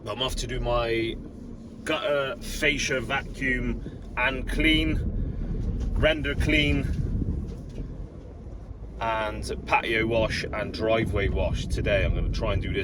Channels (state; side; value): identical; both; correlation 1.00